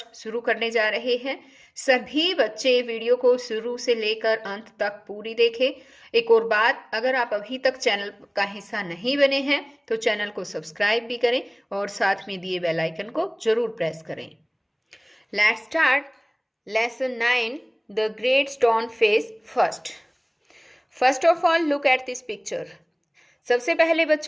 शुरू करने जा रहे हैं। सभी बच्चे वीडियो को शुरू से लेकर अंत तक पूरी देखें। एक और बात, अगर आप अभी तक चैनल का हिस्सा नहीं बने हैं तो चैनल को सब्सक्राइब भी करें और साथ में दिए बेल आइकन को जरूर प्रेस करें। Let's start lesson 9 the great stone face first. First of all look at this picture. सबसे पहले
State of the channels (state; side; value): identical; both; correlation 1.00